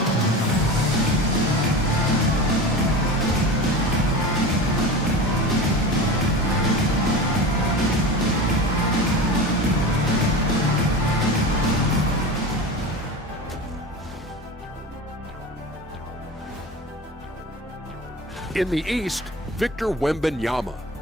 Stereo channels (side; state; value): both; normal; correlation 0.30